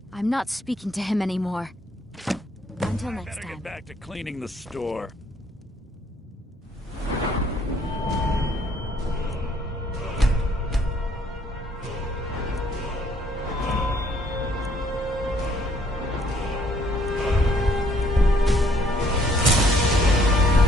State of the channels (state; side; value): normal; both; correlation 0.65